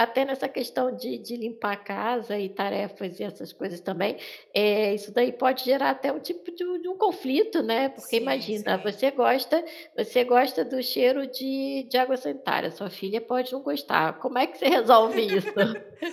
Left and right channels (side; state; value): both; identical; correlation 1.00